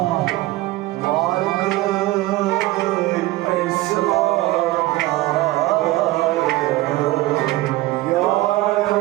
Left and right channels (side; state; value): left; quieter; 18.1 dB